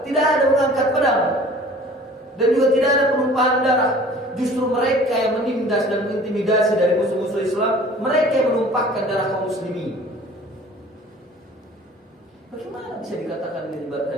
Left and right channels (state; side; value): normal; both; correlation 0.48